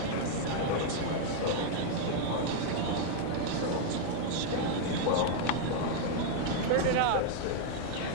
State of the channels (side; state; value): both; different; correlation 0.00